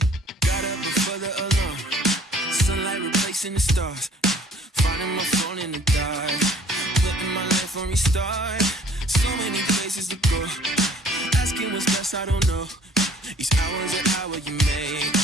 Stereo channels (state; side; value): normal; both; correlation 0.56